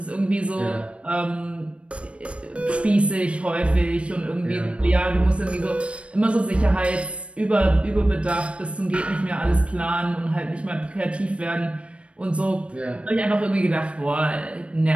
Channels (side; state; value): left; late; 0.061 ms